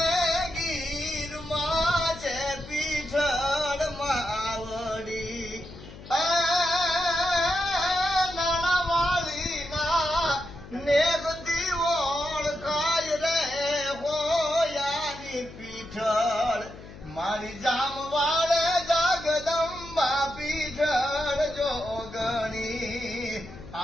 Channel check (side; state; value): left; noise; hum, 16 dB below the sound